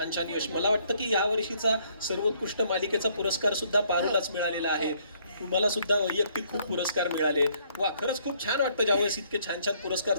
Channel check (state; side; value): inverted; both; correlation -0.66